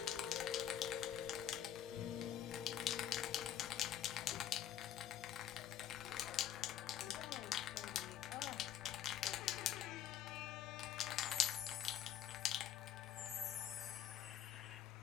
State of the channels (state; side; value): quieter; right; 10.4 dB